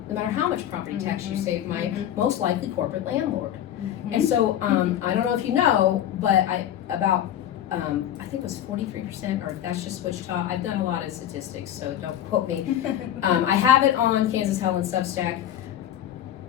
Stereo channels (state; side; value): quieter; right; 11.0 dB